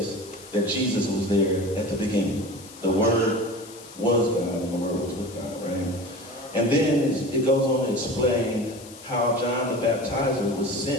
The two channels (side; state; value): left; noise; hiss, 18 dB below the sound